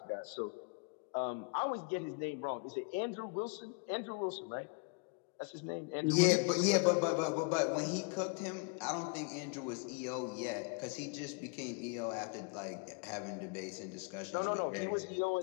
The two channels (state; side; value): quieter; right; 34.7 dB